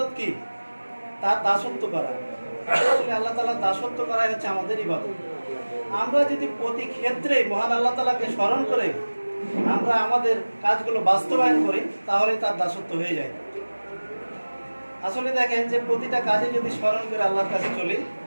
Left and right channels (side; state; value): both; inverted; correlation -1.00